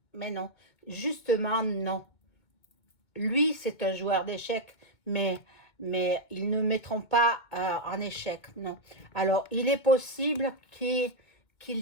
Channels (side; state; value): right; late; 2.2 ms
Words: justement non. Lui, c'est un joueur d'échecs, mais ils ne mettront pas en échec, non. Alors, il est possible qu'il